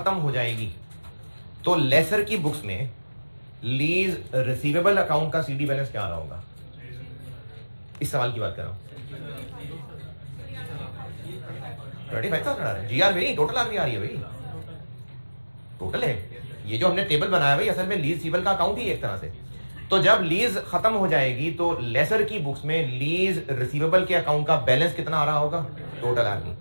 हो जाएगी तो लेसर की बुक्स में लीज रिसीवेबल अकाउंट का सीडी बैलेंस क्या आ रहा होगा? इस सवाल की बात कर रहा हूं। 35,000 आ रहा है जीआर में, टोटल आरवी आ रही है भाई, टोटल है। ये जो हमने टेबल बनाया भाई असल में लीज रिसीवेबल का अकाउंट ही एक तरह से। तो जब लीज खत्म हो जाएगी तो लेसर की बुक्स में लीज रिसीवेबल के अकाउंट का बैलेंस कितना आ रहा होगा? Total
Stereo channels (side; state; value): both; inverted; correlation -1.00